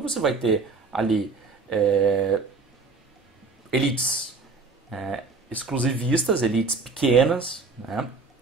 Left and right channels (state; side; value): quieter; left; 4.2 dB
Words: você vai ter ali elites exclusivistas, elites pequenas,